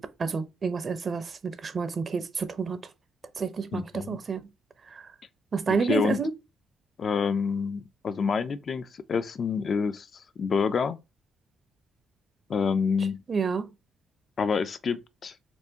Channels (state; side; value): normal; both; correlation 0.79